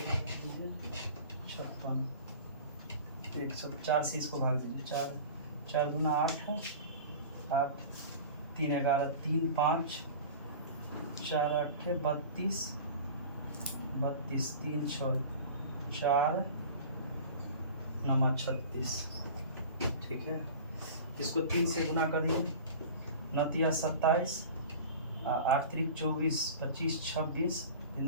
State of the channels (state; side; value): inverted; both; correlation -0.37